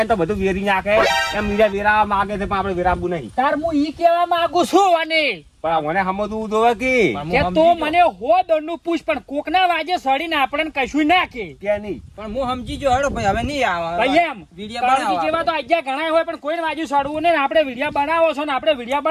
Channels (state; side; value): identical; both; correlation 1.00